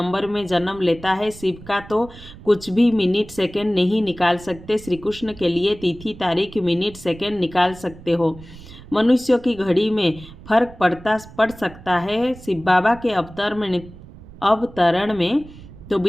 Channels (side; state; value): right; noise; rumble, 18 dB below the sound